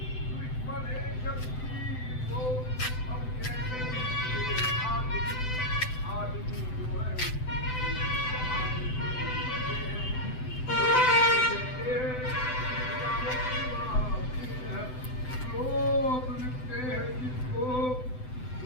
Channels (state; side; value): late; right; 7.9 ms